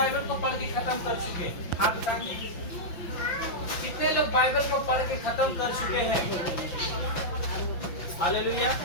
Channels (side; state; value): right; late; 5.8 ms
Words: को पढ़ के खत्म कर चुके? आप बताएंगे कितने लोग बाइबल को पढ़ के खत्म कर चुके हैं? हालेलुया।